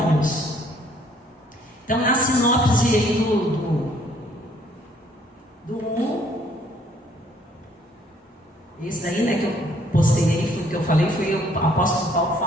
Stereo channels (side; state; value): both; normal; correlation 0.63